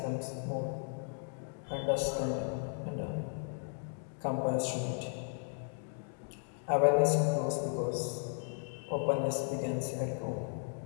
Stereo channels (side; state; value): right; silent; 54 dB below the other